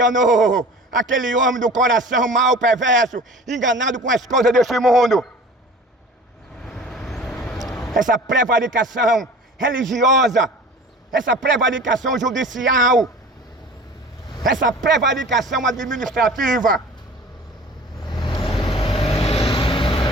aquele homem do coração mau, perverso, enganado com as coisas deste mundo. Essa prevaricação religiosa, essa prevaricação judicial, essa prevaricação administrativa.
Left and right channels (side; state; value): both; normal; correlation 0.42